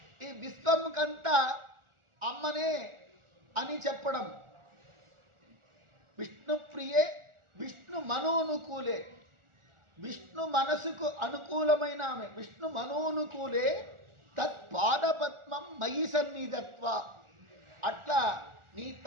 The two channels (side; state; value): left; late; 1.4 ms